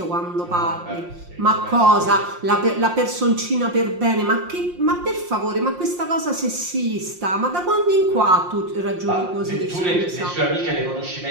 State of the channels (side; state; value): left; late; 5.6 ms